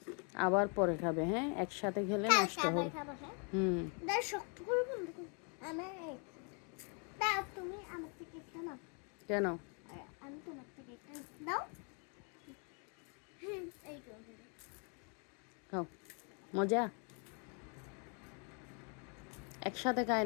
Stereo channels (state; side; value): quieter; right; 38.1 dB